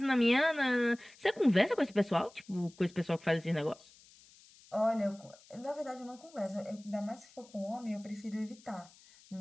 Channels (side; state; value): left; noise; hiss, 25 dB below the sound